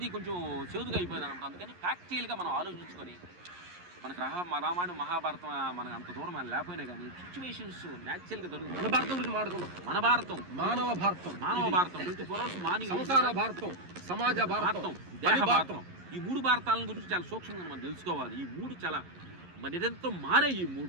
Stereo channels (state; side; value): late; left; 11 ms